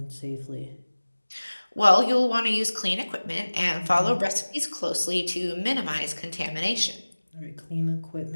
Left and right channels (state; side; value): inverted; both; correlation -1.00